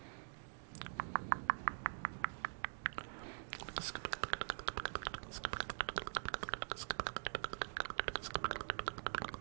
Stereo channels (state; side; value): silent; left; digital silence